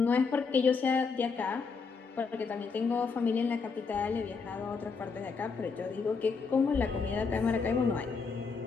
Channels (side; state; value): right; quieter; 5.0 dB